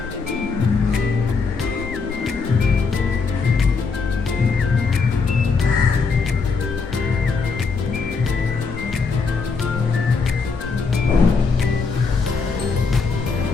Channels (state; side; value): quieter; right; 4.8 dB